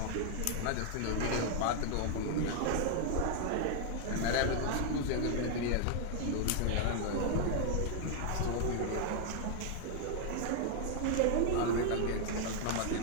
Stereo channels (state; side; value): different; both; correlation 0.00